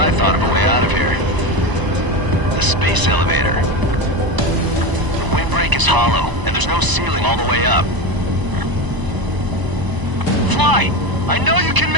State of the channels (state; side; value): late; left; 1.0 ms